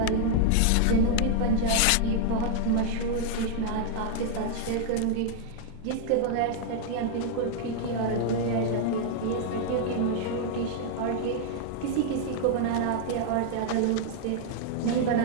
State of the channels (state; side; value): different; both; correlation -0.01